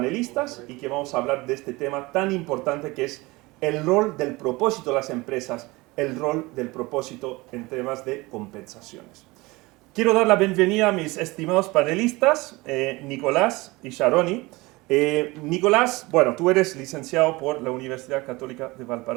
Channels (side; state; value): left; quieter; 22.5 dB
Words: y que vamos a hablar de este tema tan importante que es el rol del propósito de las empresas, el rol del propósito en temas de compensaciones. Quiero dar la bienvenida a mis estimados panelistas, Nicolás y Sharoni. Nicolás, bueno, tú eres licenciado por la Universidad Católica de